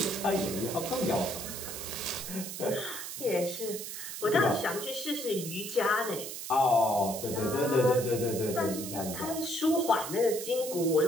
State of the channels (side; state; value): right; noise; hiss, 8 dB below the sound